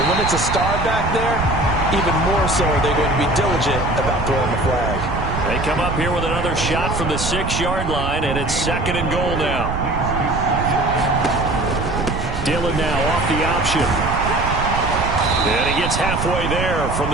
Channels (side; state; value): right; noise; rumble, 4 dB below the sound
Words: when it's a star back there, even more so are they going to be diligent about throwing the flag. They come up here with another shot from the 6-yard line, and it's 2nd and goal now. Dillon now off the option. And he gets halfway there from